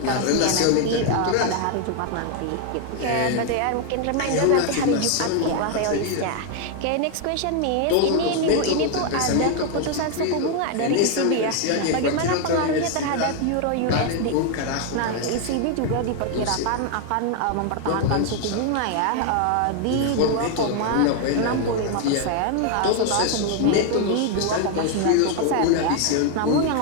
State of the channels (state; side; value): different; both; correlation 0.01